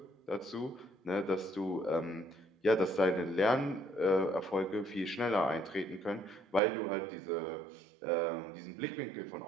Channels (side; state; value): left; drops out; at 6.6 s